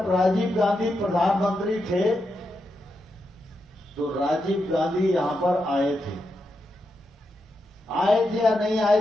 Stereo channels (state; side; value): normal; both; correlation 0.85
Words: राजीव गांधी प्रधानमंत्री थे तो राजीव गांधी यहां पर आए थे। आए थे या नहीं आए